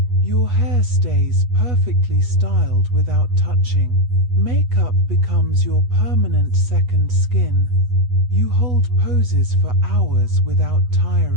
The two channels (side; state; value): left; late; 8.2 ms